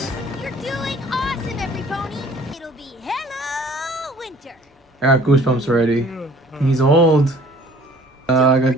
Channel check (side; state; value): both; normal; correlation 0.54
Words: You're doing awesome, every pony. It'll be Hello Winter. I got goosebumps already. He's old. I got...